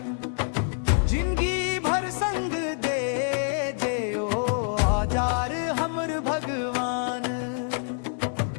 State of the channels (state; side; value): silent; right; digital silence